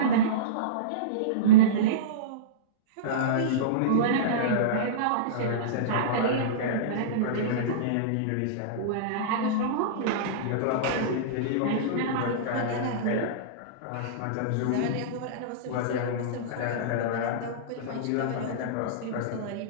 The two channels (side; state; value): both; different; correlation -0.05